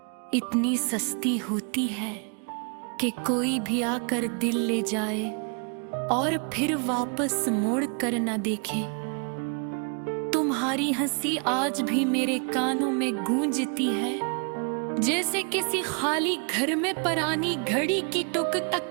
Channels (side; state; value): left; quieter; 38.5 dB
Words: इतनी सस्ती होती है कि कोई भी आकर दिल ले जाए और फिर वापस मोड़ कर न देखे। तुम्हारी हंसी आज भी मेरे कानों में गूंजती है, जैसे किसी खाली घर में पुरानी घड़ी की टुक